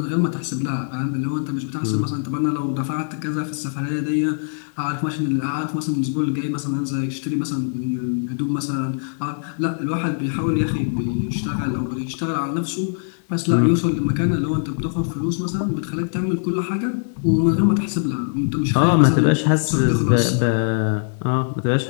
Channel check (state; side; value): silent; right; digital silence